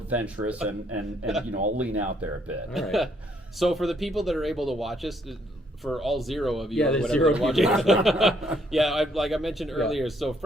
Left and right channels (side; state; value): both; normal; correlation 0.69